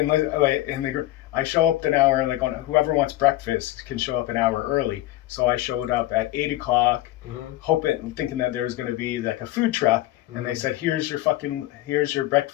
I show up an hour and whoever wants breakfast can show up an hour early. So I showed up at 8 o'clock, thinking that there was going to be like a food truck, and they said, here's your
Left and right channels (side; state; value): right; quieter; 16.0 dB